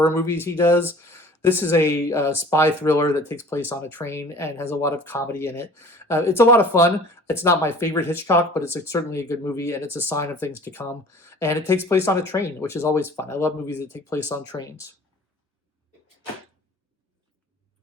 movies he does. This is a spy thriller that takes place on a train and has a lot of comedy in it. It's a lot of fun. It's not my favorite Hitchcock, but it's certainly a good movie, and it's a sign of things to come. And it takes place on a train, which is always fun. I love movies that take place on trains.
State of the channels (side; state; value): both; normal; correlation 0.46